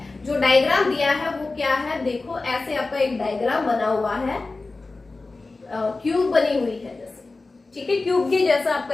जो डायग्राम दिया है वो क्या है, देखो ऐसे आपका एक डायग्राम बना हुआ है, क्यूब बनी हुई है जैसे, ठीक है, क्यूब के जैसा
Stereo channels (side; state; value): right; quieter; 3.5 dB